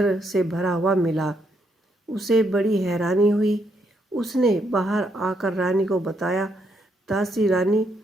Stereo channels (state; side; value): normal; both; correlation 0.76